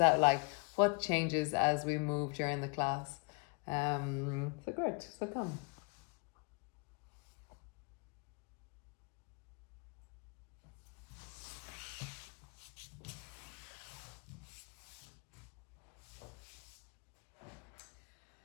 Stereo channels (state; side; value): quieter; right; 34.2 dB